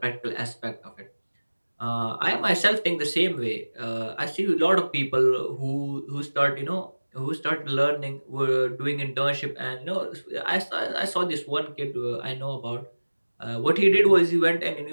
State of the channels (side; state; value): both; inverted; correlation -1.00